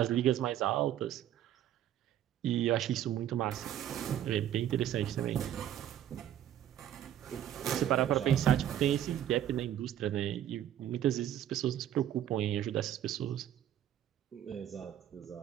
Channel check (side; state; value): left; quieter; 11.2 dB